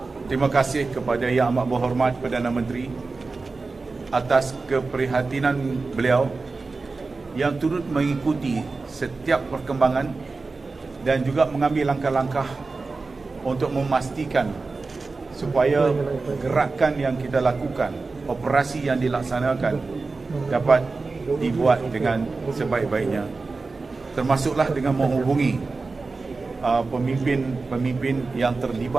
terima kasih kepada Yang Amat Berhormat Perdana Menteri atas keprihatinan beliau yang turut mengikuti setiap perkembangan dan juga mengambil langkah-langkah untuk memastikan supaya gerakan yang kita lakukan, operasi yang dilaksanakan dapat dibuat dengan sebaik-baiknya, termasuklah dengan menghubungi pemimpin-pemimpin yang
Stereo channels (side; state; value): left; quieter; 3.9 dB